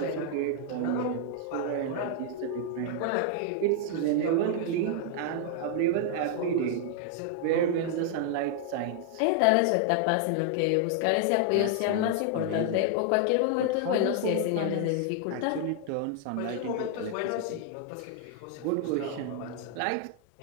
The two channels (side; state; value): both; different; correlation 0.00